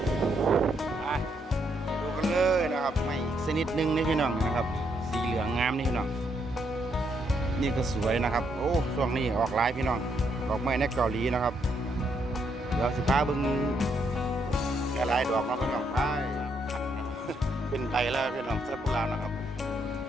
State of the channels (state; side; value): normal; both; correlation 0.75